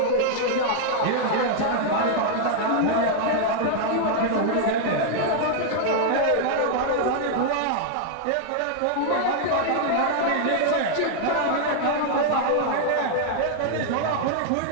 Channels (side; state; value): both; different; correlation 0.00